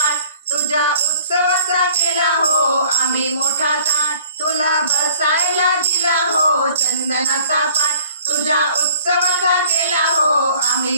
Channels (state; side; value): inverted; both; correlation -0.52